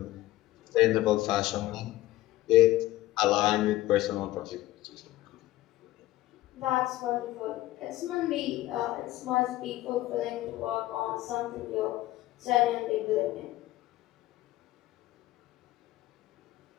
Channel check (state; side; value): quieter; right; 16.2 dB